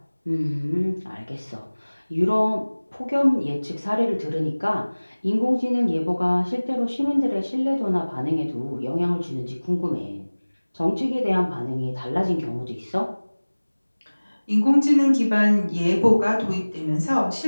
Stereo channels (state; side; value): inverted; both; correlation -1.00